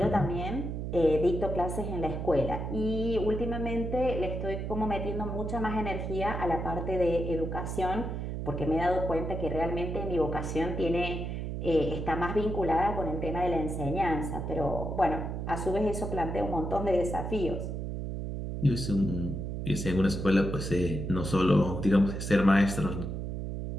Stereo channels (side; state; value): right; noise; hum, 4 dB below the sound